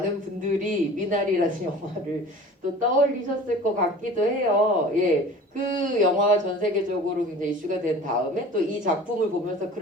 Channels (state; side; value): normal; both; correlation 0.42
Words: 분들이 미나리라는 영화를 또 떠올리셨을 것 같기도 해요. 예, 그 영화가 전 세계적으로 굉장히 이슈가 된 다음에 또 이 작품을 보면서